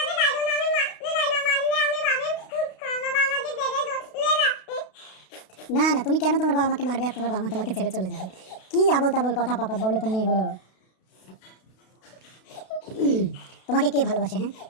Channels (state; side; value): late; right; 32 ms